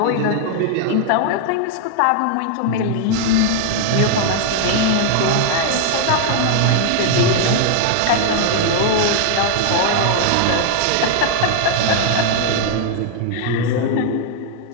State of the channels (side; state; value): both; different; correlation 0.00